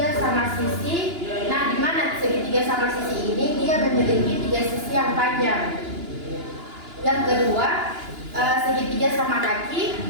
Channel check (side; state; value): left; late; 2.9 ms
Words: sama sisi. Nah, di mana segitiga sama sisi ini dia memiliki tiga sisi yang panjang. Yang kedua, segitiga sama kaki,